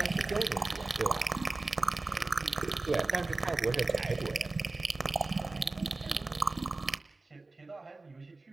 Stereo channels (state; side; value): quieter; left; 3.3 dB